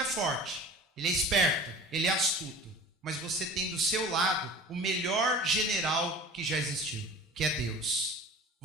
forte, ele é esperto, ele é astuto. Mas você tem do seu lado o melhor general que já existiu, que é Deus.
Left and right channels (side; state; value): both; normal; correlation 0.40